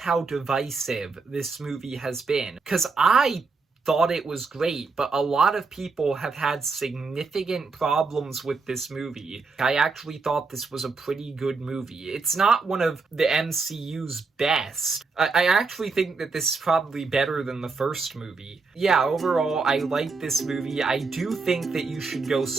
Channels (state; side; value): quieter; left; 4.3 dB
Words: divisive this movie has been, because I thought it was great, but a lot of people have had significant problems with this movie. I actually thought this was a pretty good movie. It's not one of the MCU's best. I actually think that this is probably better than the first movie. Yeah, overall, I like this movie. I do think that you should go